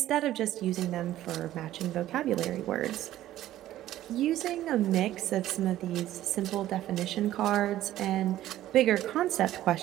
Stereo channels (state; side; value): quieter; left; 13.7 dB